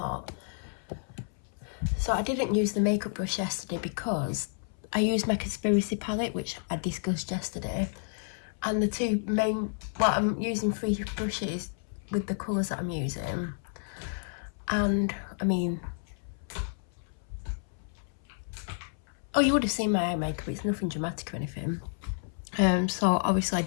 So I didn't use the makeup brush yesterday because I used my conspiracy palette, which I discussed yesterday. And the two main, well, I'm using 3 brushes with the colours that I'm using. And, I mean, oh, you would have seen my eye makeup. It's nothing dramatic or anything. So obviously I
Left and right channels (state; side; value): silent; right; 57 dB below the other